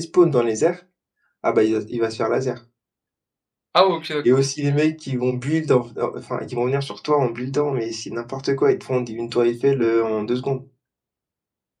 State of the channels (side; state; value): both; identical; correlation 1.00